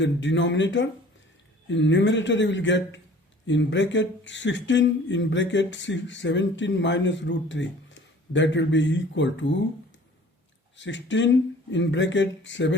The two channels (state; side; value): normal; both; correlation 0.49